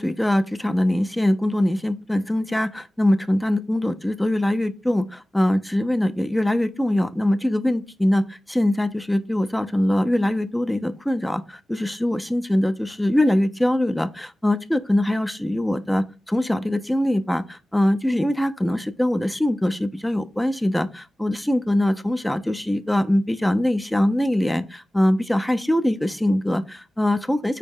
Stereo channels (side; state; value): both; normal; correlation 0.98